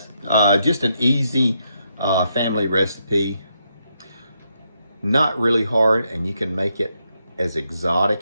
Just an easy family recipe. Not really hard, and you can make it as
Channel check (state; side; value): inverted; both; correlation -0.79